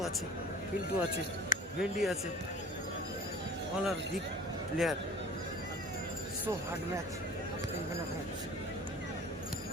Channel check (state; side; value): normal; both; correlation 0.43